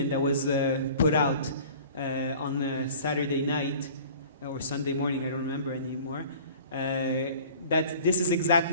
that was put out on Saturday night, or Sunday morning, I don't remember anymore, that this is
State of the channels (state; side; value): inverted; both; correlation -0.45